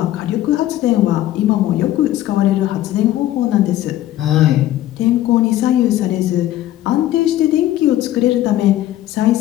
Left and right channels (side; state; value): right; quieter; 13.8 dB